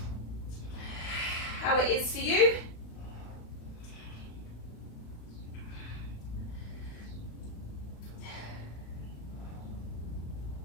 how it is for you.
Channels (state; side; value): late; right; 35 ms